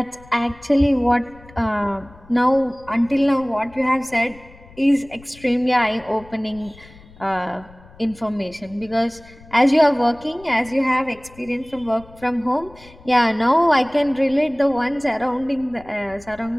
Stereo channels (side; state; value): left; noise; rumble, 23 dB below the sound